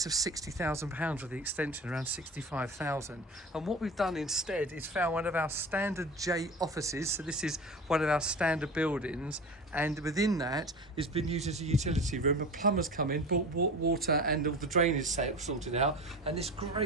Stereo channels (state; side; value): normal; both; correlation 0.33